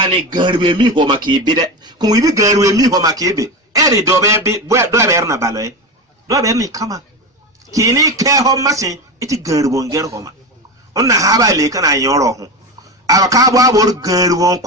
غربي مي هو مكيبي كم يبي غربي مي هو مكيبي إري دوبي دوبيرنا بالوي دوبيرني كما كيني كيهو مسين إتي غربون غرهما أنا هابا ليكنا يوروهم أراكابو أبور غربون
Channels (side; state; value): both; normal; correlation 0.21